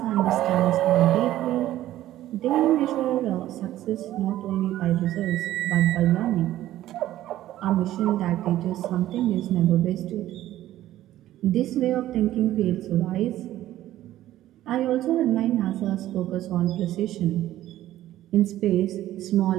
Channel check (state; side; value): quieter; left; 13.9 dB